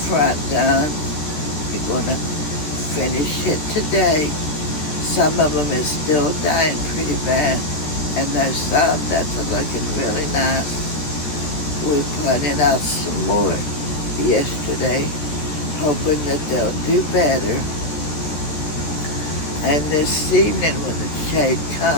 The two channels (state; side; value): late; right; 13 ms